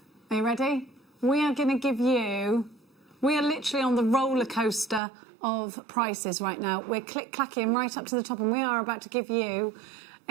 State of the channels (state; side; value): drops out; left; at 5.0 s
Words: Are you ready? We are going to give you... We are literally on the roller coaster of prices right now. We're click-clacking right up to the top and we are about to give you